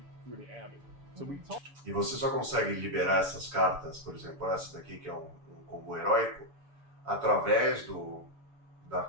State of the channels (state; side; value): late; left; 7.0 ms